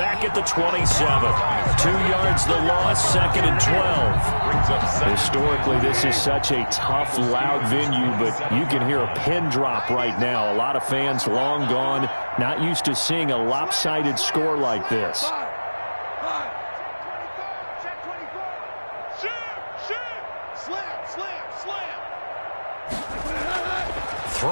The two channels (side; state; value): both; inverted; correlation -1.00